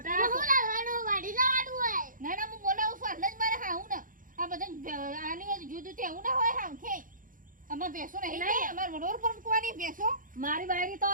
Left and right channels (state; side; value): late; left; 0.39 ms